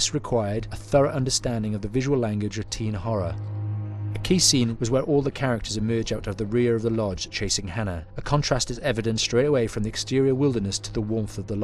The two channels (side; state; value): both; identical; correlation 1.00